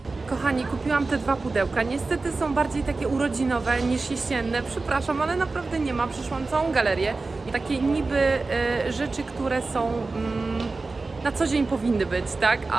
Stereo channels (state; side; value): quieter; left; 3.7 dB